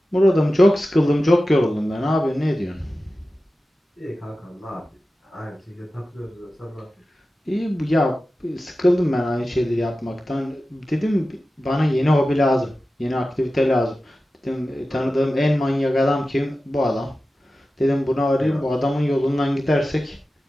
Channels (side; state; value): both; normal; correlation 0.94